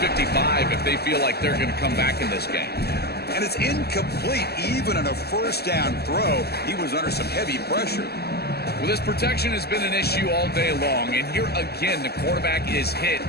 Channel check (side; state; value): right; late; 0.46 ms